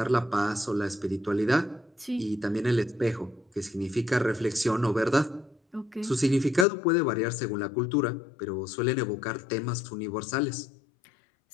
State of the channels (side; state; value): right; drops out; at 6.7 s